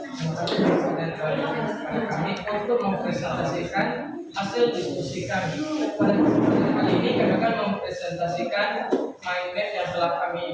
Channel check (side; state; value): both; identical; correlation 1.00